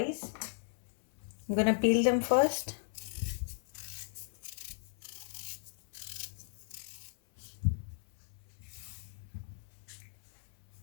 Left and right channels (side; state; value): right; silent; 54 dB below the other